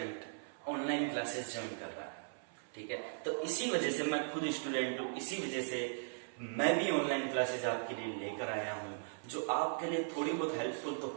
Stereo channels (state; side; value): silent; left; 52 dB below the other